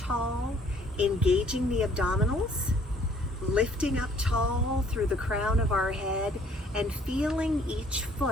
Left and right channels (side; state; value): both; normal; correlation 0.60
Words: engaging the abdominals, lifting up tall through the crown of our head, and feeling each